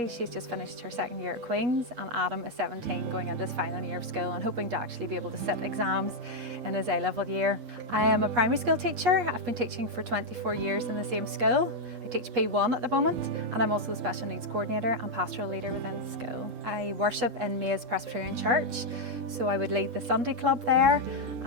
she's just finished her second year at Queen's, and Adam is 17, going into his final year of school and hoping to actually be able to sit exams in his A-level year. I am a primary school teacher. I've been teaching for 24 years in the same school. I teach P1 at the moment, and I'm also the special needs coordinator and pastoral leader within the school. I worship in Mays Presbyterian Church, so I would lead the Sunday club there.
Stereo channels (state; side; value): late; left; 3.7 ms